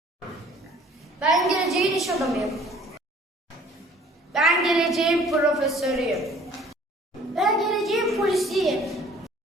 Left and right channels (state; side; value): normal; both; correlation 0.54